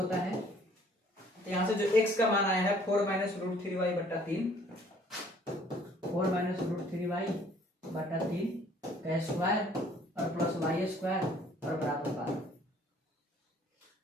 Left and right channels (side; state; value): both; normal; correlation 0.58